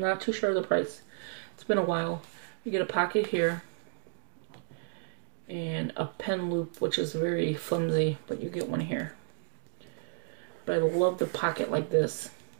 not too sure of the price. It's been a while. You get a pocket here. And a pen loop, which is very flimsy, but you get one here. But I love the pocket like this.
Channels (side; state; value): left; silent; digital silence